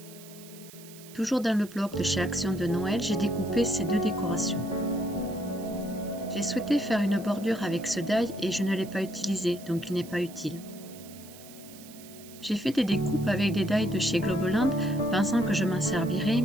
Toujours dans le bloc de chez Action de Noël, j'ai découpé ces deux décorations. J'ai souhaité faire une bordure avec ce die et je ne l'ai pas utilisé, donc il n'est pas utile. J'ai fait des découpes avec des die de chez Globeland, pensant que je m'en servirais,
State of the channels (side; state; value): right; noise; hiss, 19 dB below the sound